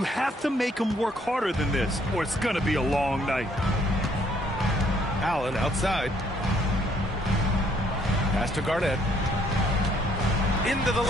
have to make them work harder than this, or it's going to be a long night. Allen outside. Pass to Garnett. Into the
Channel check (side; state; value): both; normal; correlation 0.66